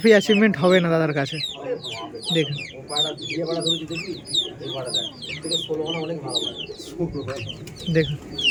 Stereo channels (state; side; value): identical; both; correlation 1.00